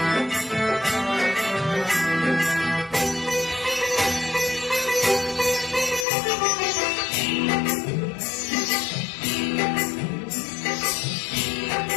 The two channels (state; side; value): drops out; right; at 6.1 s